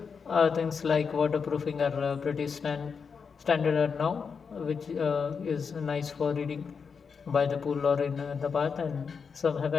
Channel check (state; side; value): quieter; right; 5.8 dB